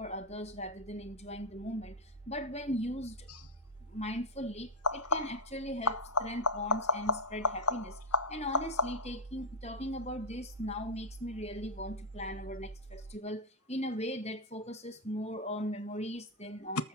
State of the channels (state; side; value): normal; both; correlation -0.02